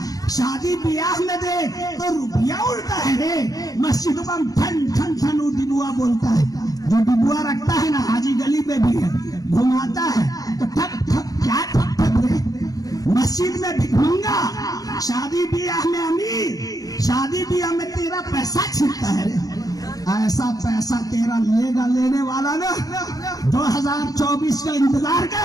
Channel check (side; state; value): right; late; 0.18 ms